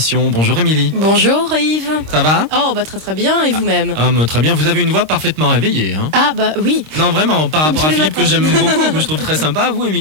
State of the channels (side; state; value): left; late; 26 ms